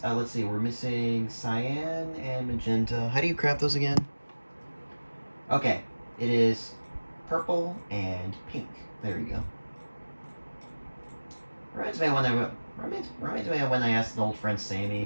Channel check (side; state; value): both; inverted; correlation -1.00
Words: let's see, we're missing cyan and magenta. How do you craft those again? Okay, it is purple and pink. There you go. Reminds me of when I asked an old friend